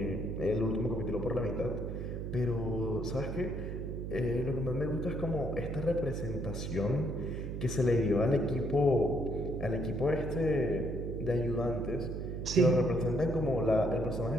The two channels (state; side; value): noise; right; hum, 5 dB below the sound